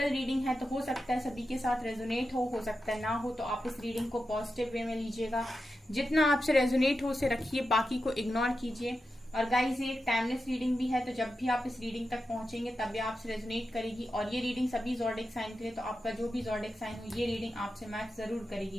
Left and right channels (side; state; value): both; normal; correlation 0.90